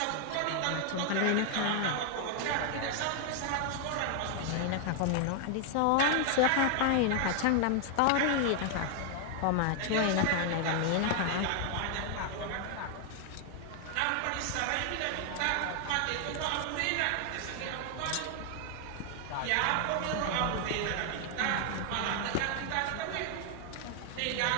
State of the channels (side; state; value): both; different; correlation 0.00